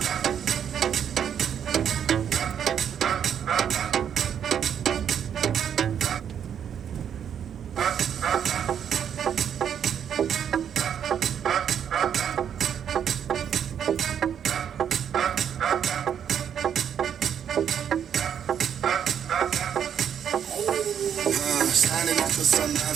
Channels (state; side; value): quieter; left; 8.6 dB